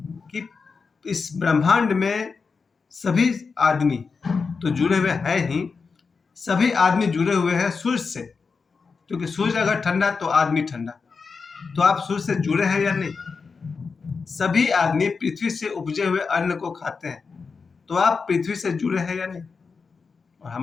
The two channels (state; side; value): quieter; right; 5.0 dB